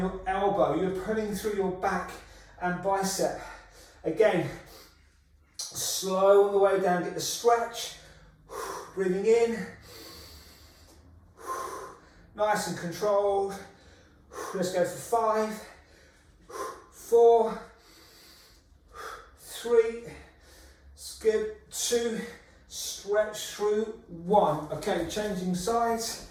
elbow. You're pulling through your back and bicep. Again, slow on the way down. Get the stretch. Breathing in, nice and controlled. Let's go for 5, 4, 3, skip 2, stretch through 1. Okay, changing sides,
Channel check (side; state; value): both; identical; correlation 1.00